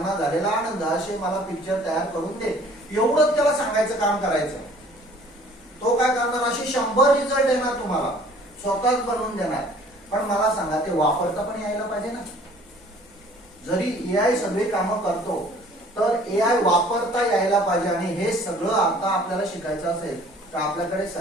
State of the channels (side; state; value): both; normal; correlation 0.53